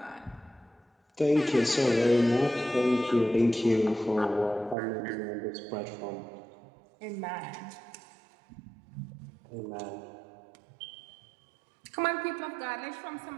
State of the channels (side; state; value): left; drops out; at 4.8 s